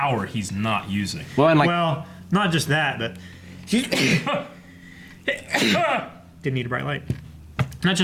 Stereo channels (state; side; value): identical; both; correlation 1.00